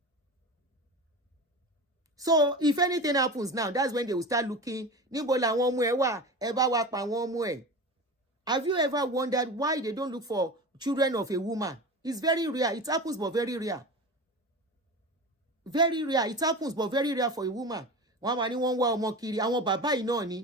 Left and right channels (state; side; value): normal; both; correlation 0.30